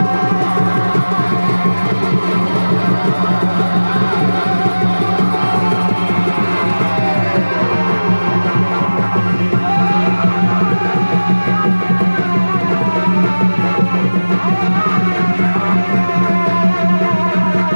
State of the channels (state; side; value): inverted; both; correlation -1.00